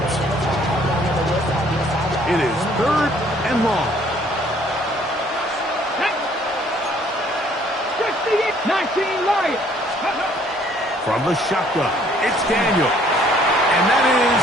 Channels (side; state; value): both; normal; correlation 0.61